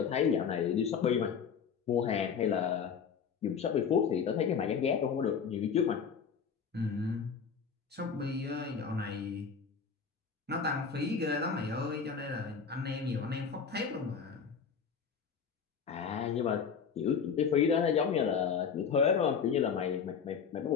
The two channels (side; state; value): right; quieter; 6.4 dB